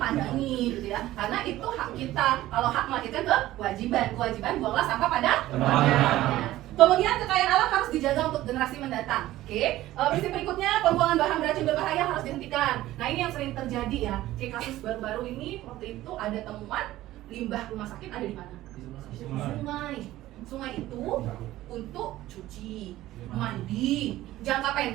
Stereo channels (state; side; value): quieter; left; 15.5 dB